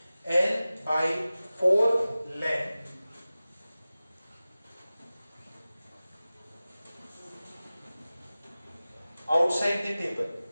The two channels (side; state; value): both; inverted; correlation -0.97